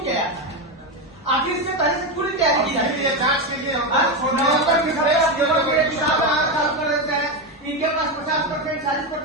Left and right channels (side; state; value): both; normal; correlation 0.12